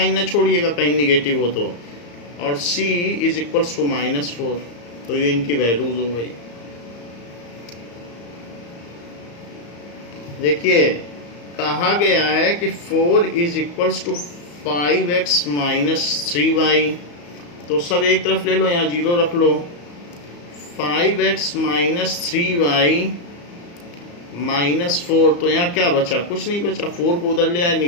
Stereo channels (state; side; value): late; right; 34 ms